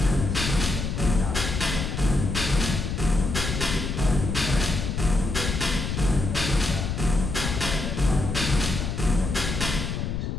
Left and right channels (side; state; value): left; noise; rumble, 3 dB below the sound